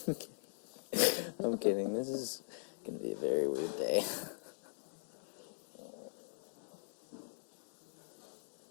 I'm kidding. This is gonna be a very weird day.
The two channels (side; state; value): right; silent; digital silence